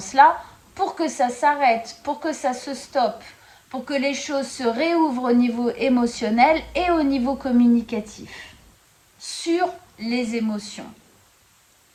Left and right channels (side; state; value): both; identical; correlation 1.00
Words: pour que ça s'arrête, pour que ça se stoppe, pour que les choses se réouvrent au niveau émotionnel et au niveau communicatif, sur les émotions,